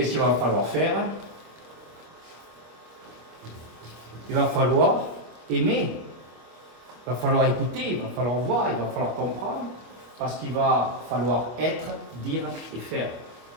qu'il va falloir faire? Il va falloir aimer, il va falloir écouter, il va falloir voir, il va falloir comprendre, parce qu'il va falloir être, dire et faire.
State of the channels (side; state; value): left; late; 25 ms